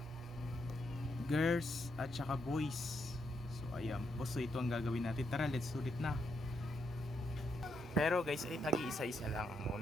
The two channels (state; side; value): normal; both; correlation 0.80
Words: Girls at saka boys. So ayan po, so ito ang gagawin natin. Tara, let's sulit na. Pero guys, ay tagi-isa-isa lang